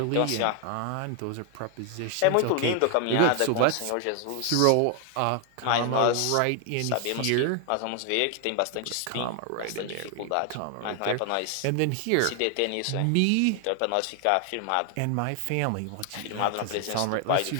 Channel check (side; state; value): both; different; correlation 0.00